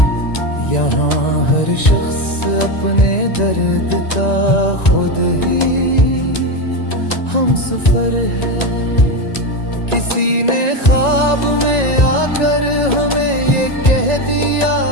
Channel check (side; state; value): right; late; 1.9 ms